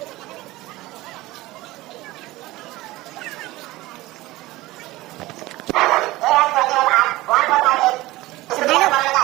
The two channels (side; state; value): left; quieter; 18.8 dB